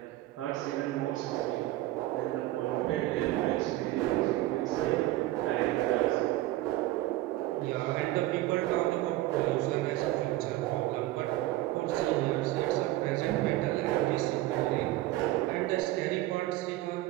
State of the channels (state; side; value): quieter; left; 16.6 dB